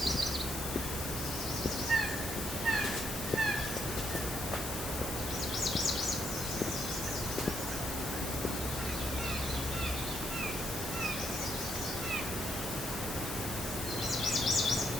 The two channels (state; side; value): noise; left; hiss, 7 dB below the sound